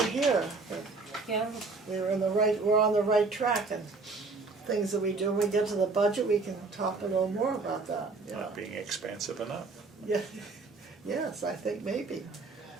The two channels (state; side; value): quieter; left; 3.9 dB